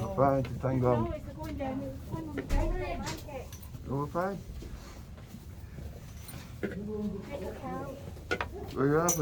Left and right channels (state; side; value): identical; both; correlation 1.00